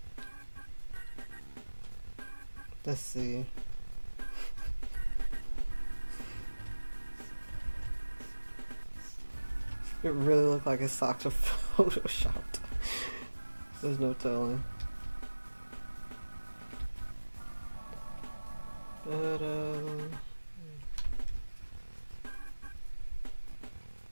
Let's see. It really looked like his socks were photoshopped. There's no telling. But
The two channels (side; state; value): both; inverted; correlation -1.00